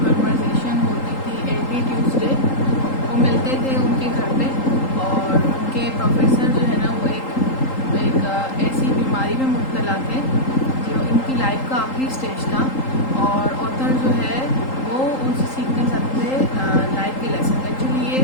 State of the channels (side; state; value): right; late; 3.8 ms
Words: कन्वर्सेशन होती थी एवरी ट्यूसडे, वो मिलते थे उनके घर पे और उनके प्रोफेसर जो है ना वो एक ऐसी बीमारी में मुब्तला थे जो इनकी लाइफ का आखिरी स्टेज था और ऑथर जो है वो उनसे सीखना चाहते थे लाइफ के लेसन। एक्चुअली ये